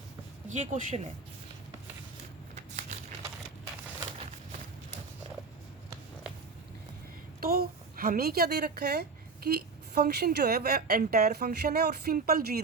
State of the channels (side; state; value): left; quieter; 4.5 dB